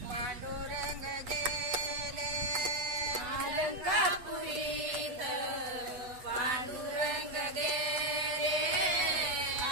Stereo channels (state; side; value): late; left; 8.1 ms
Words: पांडुरंग गेले अलंकापुरीत पांडुरंग गेले